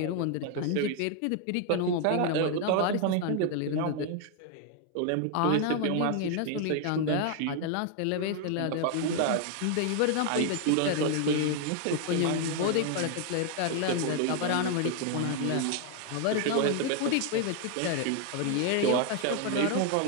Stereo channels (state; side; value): different; both; correlation 0.00